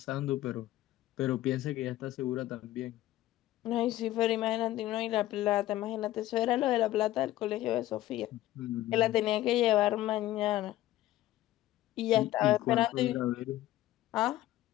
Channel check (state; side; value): quieter; right; 15.0 dB